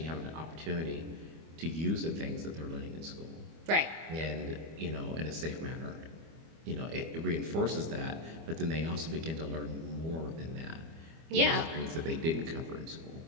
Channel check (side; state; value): left; late; 25 ms